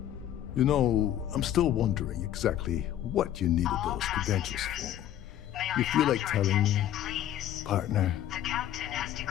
You know, I'm still wondering exactly what you needed those credentials for. You feel like telling me, partner? The captain has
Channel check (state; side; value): quieter; right; 11.6 dB